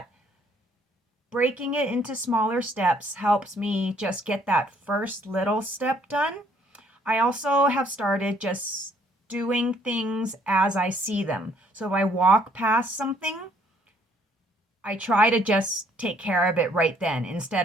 breaking it into smaller steps helps me just get that first little step done. I also have started just doing things as I see them. So if I walk past something, I try to just take care of it right then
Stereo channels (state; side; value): normal; both; correlation 0.64